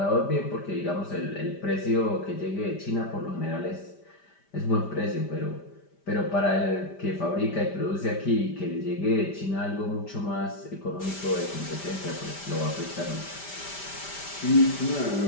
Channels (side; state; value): right; late; 5.1 ms